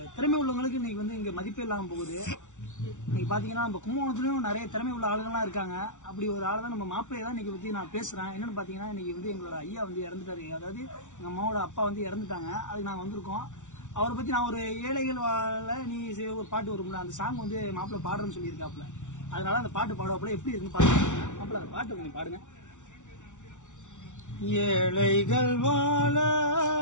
திறமை உள்ளவங்களுக்கு இன்னைக்கு இங்க மதிப்பே இல்லாம போகுது. இன்னைக்கு பாத்தீங்கன்னா நம்ம கும்பகோணத்துலயும் நிறைய திறமை உள்ள ஆளுங்கள்லாம் இருக்காங்க. அப்படி ஒரு ஆள் தான் நம்ம மாப்பிள்ளையை தான் இன்னைக்கு பத்தி நான் பேசுறேன். என்னன்னு பாத்தீங்கன்னா இன்னைக்கு எங்களோட ஐயா இறந்துட்டாரு. அதாவது எங்க அம்மாவோட அப்பா இறந்துட்டாங்க. அதுக்கு நாங்க வந்திருக்கோம். அவரை பத்தி நான் ஒரு ஏழைகள் வாழ நீ ஒரு பாட்டு வரும்ல, அந்த சாங் மாப்பிள்ளை பாடுறேன்னு சொல்லியிருக்காப்புல. அதனால அந்த பாட்டு பாடுவாப்புல எப்படி இருக்குன்னு பாருங்க. மாப்பிள்ளை அந்த பாட்டு கொஞ்சம் பாடுங்க. ஏழைகள் வாழ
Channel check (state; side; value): late; right; 0.86 ms